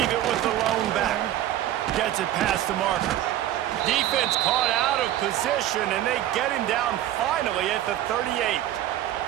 it with the lone back. Gets it past the marker. Defense caught out of position, and they get him down finally at the 38.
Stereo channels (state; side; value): quieter; left; 12.8 dB